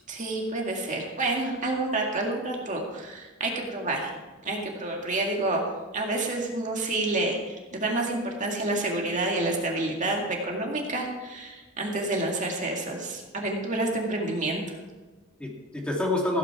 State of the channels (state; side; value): normal; both; correlation 0.23